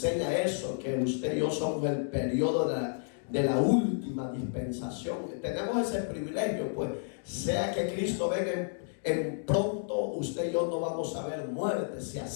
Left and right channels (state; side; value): silent; right; digital silence